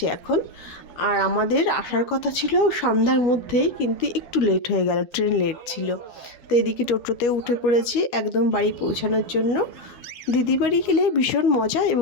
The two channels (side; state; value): right; late; 12 ms